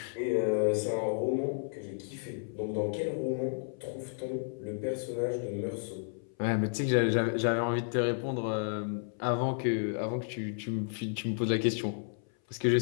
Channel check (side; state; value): right; silent; 56 dB below the other